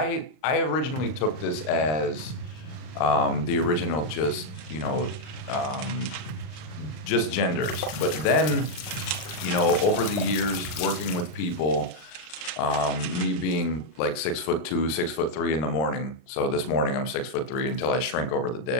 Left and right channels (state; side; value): late; right; 39 ms